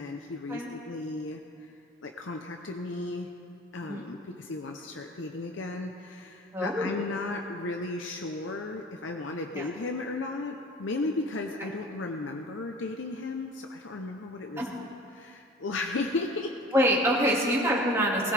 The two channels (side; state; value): both; normal; correlation 0.43